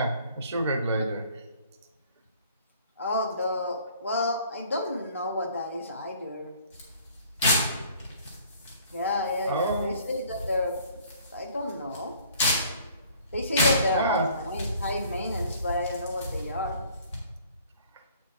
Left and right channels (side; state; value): both; inverted; correlation -0.55